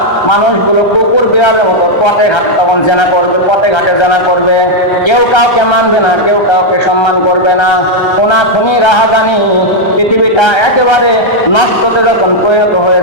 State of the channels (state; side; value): late; right; 1.3 ms